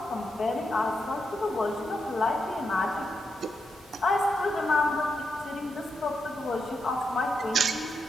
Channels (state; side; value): normal; both; correlation 0.84